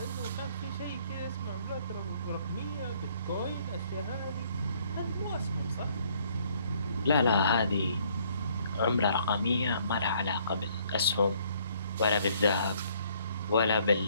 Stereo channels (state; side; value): inverted; both; correlation -0.63